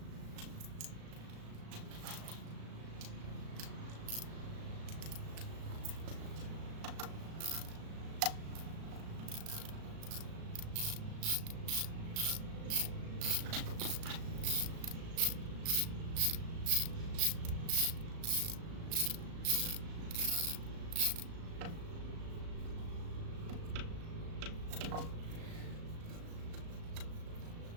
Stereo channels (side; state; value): left; late; 36 ms